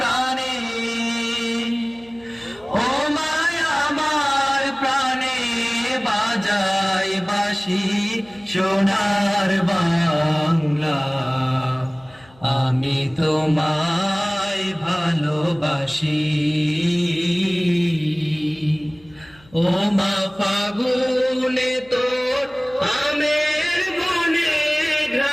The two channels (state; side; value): noise; left; hum, 27 dB below the sound